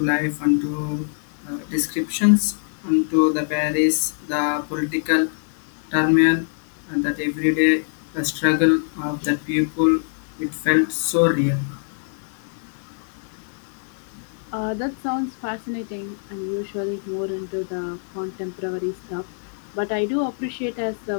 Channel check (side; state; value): right; silent; digital silence